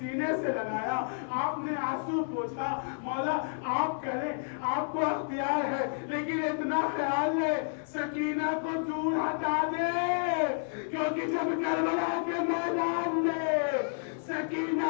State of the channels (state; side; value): silent; right; digital silence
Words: سے لگایا، آپ نے آنسو پوچھا، مولا آپ کریں، آپ کو اختیار ہے، لیکن اتنا خیال ہے سکینہ کو دور ہٹا دے، کیونکہ جب کربلا کے میدان میں